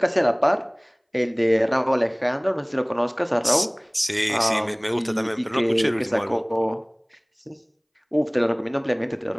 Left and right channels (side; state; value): both; identical; correlation 1.00